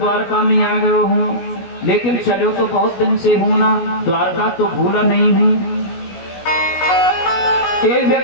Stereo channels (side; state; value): right; late; 16 ms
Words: में आ गया हूँ, लेकिन चलो तो बहुत दिन से हूँ ना, द्वारका तो भूला नहीं हूँ। एक